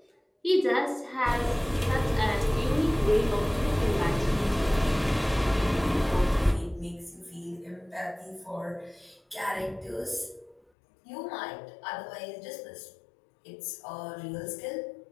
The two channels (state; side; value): drops out; right; at 10.6 s